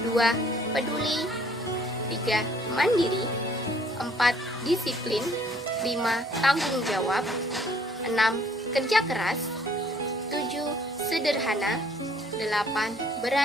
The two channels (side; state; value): both; normal; correlation 0.60